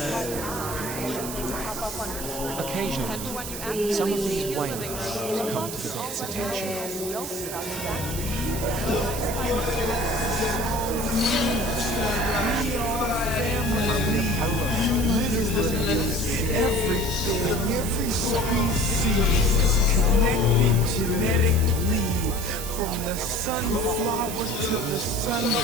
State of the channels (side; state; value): right; noise; hiss, 8 dB below the sound